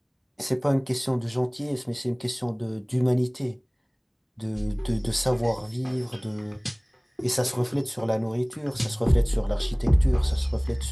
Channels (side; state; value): both; identical; correlation 1.00